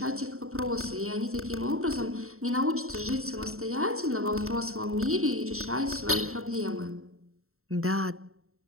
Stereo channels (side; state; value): left; late; 0.63 ms